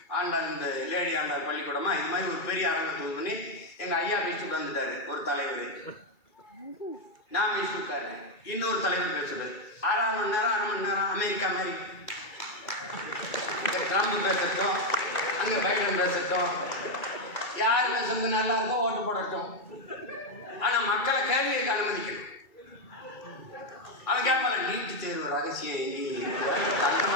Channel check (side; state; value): right; late; 2.3 ms